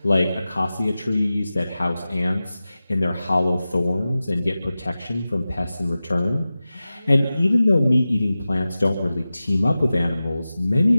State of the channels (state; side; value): inverted; both; correlation -0.95